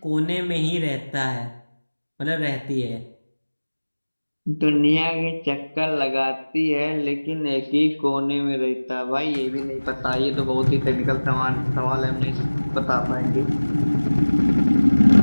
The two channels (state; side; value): inverted; both; correlation -1.00